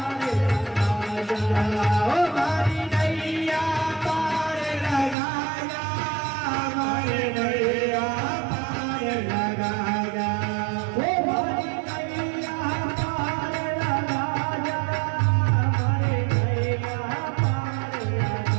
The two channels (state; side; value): drops out; left; at 5.2 s